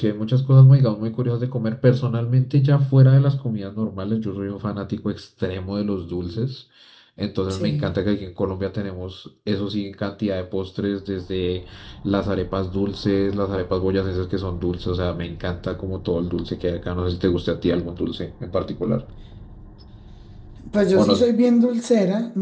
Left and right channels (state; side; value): identical; both; correlation 1.00